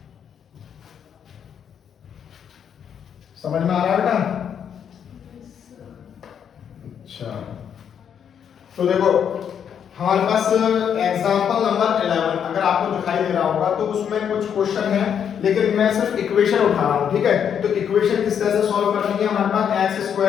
समझ में आ रहा है बेटा। अच्छा, तो देखो हमारे पास एग्जांपल नंबर 11 अगर आपको दिखाई दे रहा होगा तो उसमें कुछ क्वेश्चन है, लेकिन मैं सिर्फ इक्वेशन उठा रहा हूं। ठीक है, तो इक्वेशन किस तरह से सॉल्व करनी है, हमारे पास x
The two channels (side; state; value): right; quieter; 8.2 dB